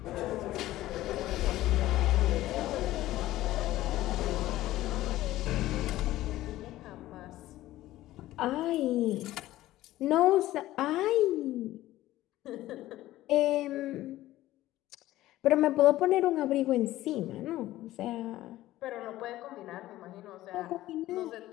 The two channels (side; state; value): right; quieter; 15.5 dB